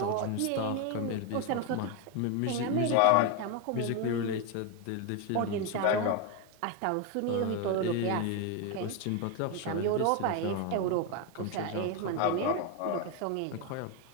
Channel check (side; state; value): both; different; correlation 0.02